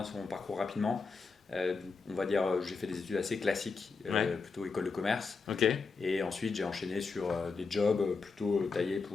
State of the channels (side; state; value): right; quieter; 4.6 dB